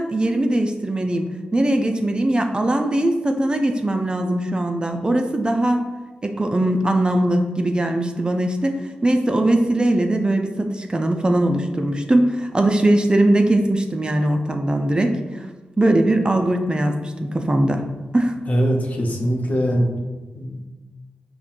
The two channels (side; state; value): both; normal; correlation 0.94